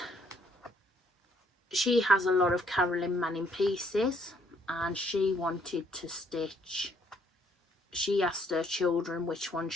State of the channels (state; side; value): normal; both; correlation 0.67